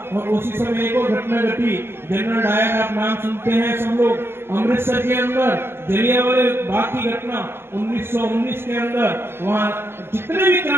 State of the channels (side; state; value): left; late; 0.11 ms